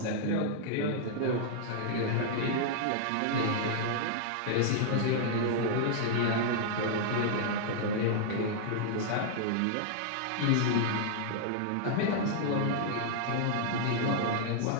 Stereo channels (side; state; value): both; different; correlation -0.01